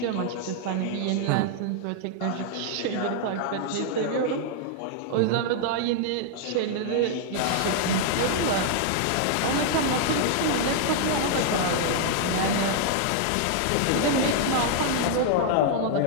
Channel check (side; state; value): both; different; correlation -0.01